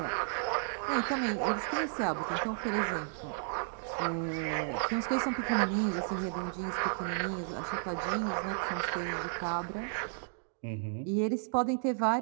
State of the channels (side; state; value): left; silent; digital silence